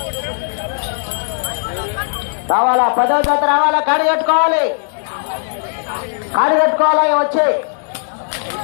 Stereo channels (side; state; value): right; silent; digital silence